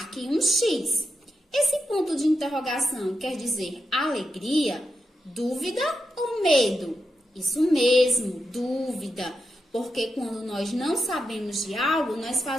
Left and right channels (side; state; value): both; normal; correlation 0.87